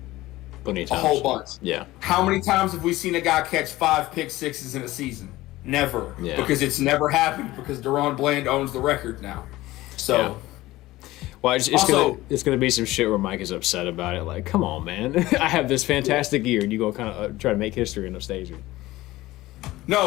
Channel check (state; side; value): quieter; right; 17.6 dB